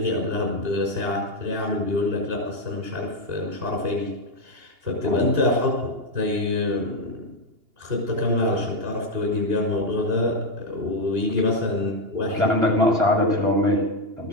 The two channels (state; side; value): late; left; 2.8 ms